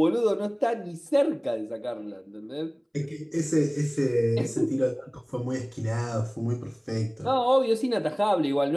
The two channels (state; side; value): identical; both; correlation 1.00